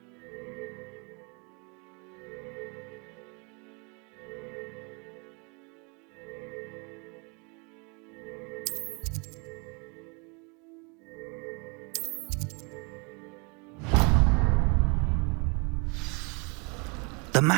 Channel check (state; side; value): quieter; left; 32.1 dB